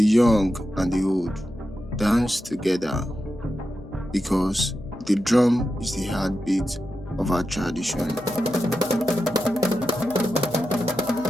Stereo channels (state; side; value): noise; left; hum, 17 dB below the sound